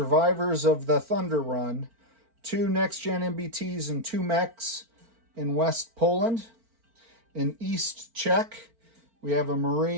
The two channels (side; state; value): left; late; 4.4 ms